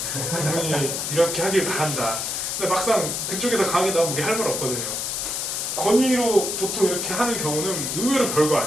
그분이 이렇게 하길 바란다. 근데 막상 그쪽에서 강하게 나오면 우리 할 말 없거든요. 권위로 보통 이렇게 하는 경우는 의외로 별거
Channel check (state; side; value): noise; left; hiss, 2 dB below the sound